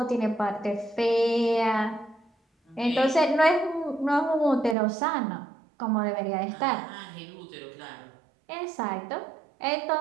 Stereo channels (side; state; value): left; drops out; at 4.8 s